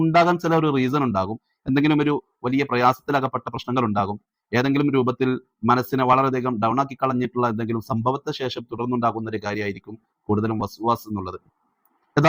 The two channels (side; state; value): both; identical; correlation 1.00